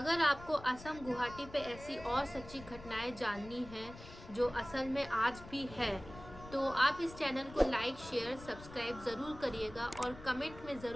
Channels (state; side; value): noise; left; rumble, 16 dB below the sound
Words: आपको असम गुवाहाटी पे ऐसी और सच्ची घटनाएं जाननी है जो असल में आज भी है, तो आप इस चैनल को लाइक, शेयर, सब्सक्राइब ज़रूर करिएगा, और कमेंट में